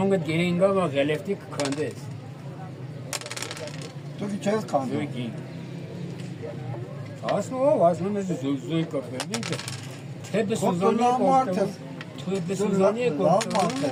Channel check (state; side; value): identical; both; correlation 1.00